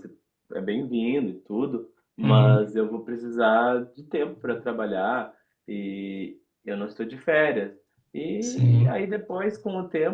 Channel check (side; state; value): both; identical; correlation 1.00